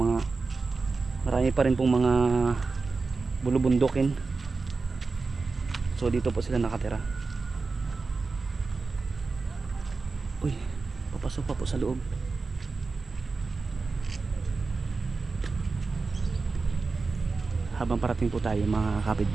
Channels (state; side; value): quieter; left; 4.1 dB